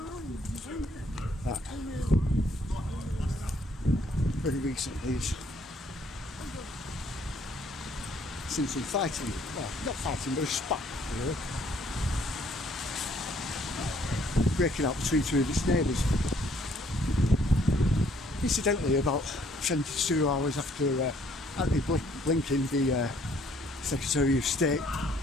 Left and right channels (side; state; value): both; normal; correlation 0.64